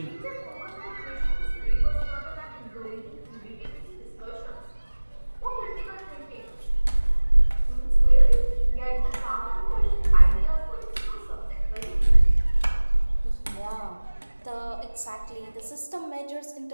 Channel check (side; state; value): both; inverted; correlation -1.00